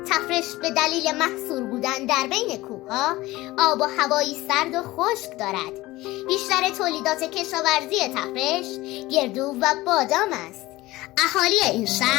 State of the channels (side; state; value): right; quieter; 18.7 dB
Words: تفرش به دلیل محصور بودن در بین کوهها آب و هوایی سرد و خشک دارد. بیشتر تولیدات کشاورزی تفرش گردو و بادام است. اهالی این